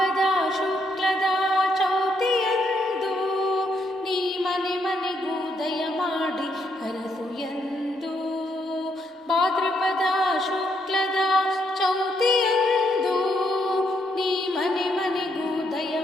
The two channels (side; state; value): both; normal; correlation 0.75